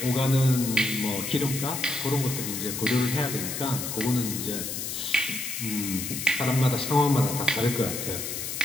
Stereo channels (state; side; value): noise; left; hiss, 5 dB below the sound